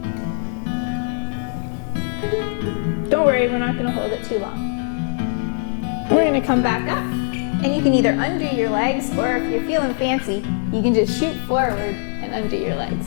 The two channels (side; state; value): right; silent; digital silence